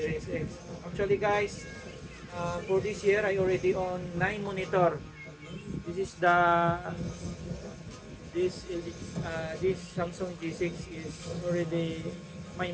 X. Actually, guys, for this year, I already own 9 monitor. This Samsung G6 is already my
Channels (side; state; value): both; identical; correlation 1.00